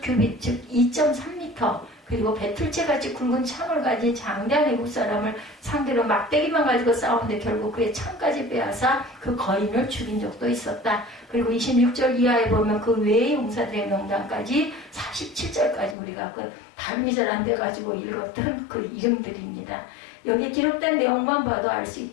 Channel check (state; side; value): drops out; right; at 16.0 s